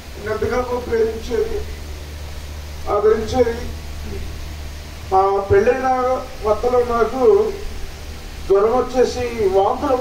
ఎంతగా ప్రేమించేది, ఆదరించేది. మా పెళ్ళైన కొత్తలో నాకు జ్వరం వచ్చేసి వాంతులు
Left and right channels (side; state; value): both; identical; correlation 1.00